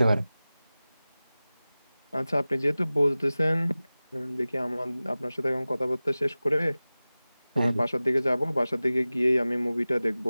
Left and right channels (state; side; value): inverted; both; correlation -0.97